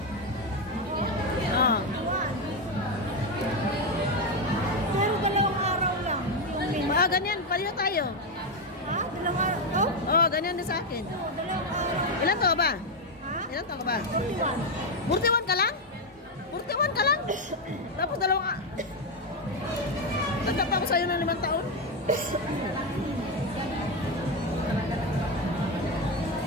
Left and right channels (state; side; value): normal; both; correlation 0.08